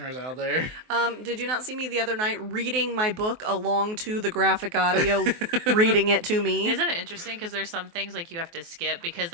out there. Did you not see me the other night reading my book along to the graphic audio, reading it to me? Isn't it interesting? Because there's some things like you have to skip because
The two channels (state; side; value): late; left; 23 ms